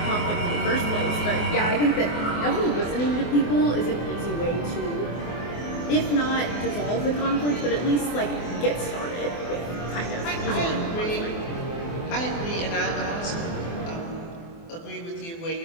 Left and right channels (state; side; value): late; right; 24 ms